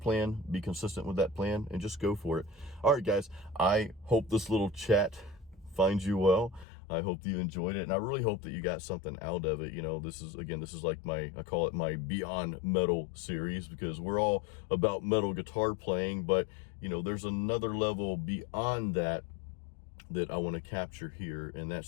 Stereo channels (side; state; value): right; drops out; at 6.7 s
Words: be consistent with that plan, and just go for it. All right, guys, I hope this little chat finds you well. I hope that you enjoyed it, and I really hope that you got something out of it. You know, this is like I call it my Beyond Metal series, because we're all about metal guitar playing, but, you know, there's another level beyond that I want to capture here, and